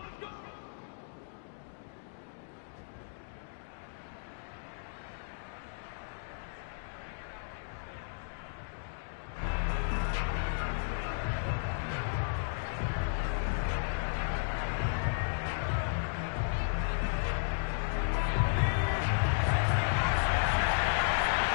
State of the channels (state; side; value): silent; right; digital silence